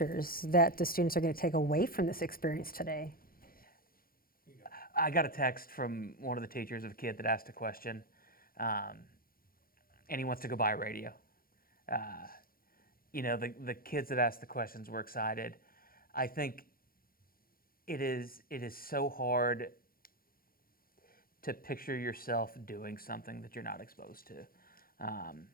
that the students are going to take away from this experience today? I got a text from one of the teachers of a kid that asked a question, and he wants to go buy a radio. The kids that asked the questions were excited. I think it is so hard to picture yourself doing something that you're not exposed to.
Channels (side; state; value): right; late; 0.42 ms